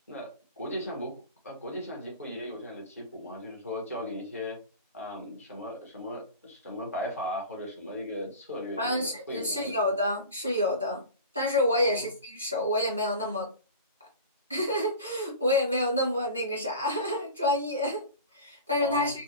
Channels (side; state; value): both; inverted; correlation -0.35